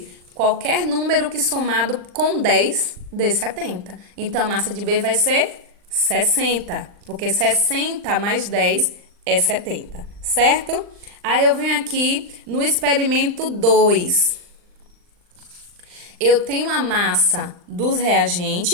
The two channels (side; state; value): left; late; 39 ms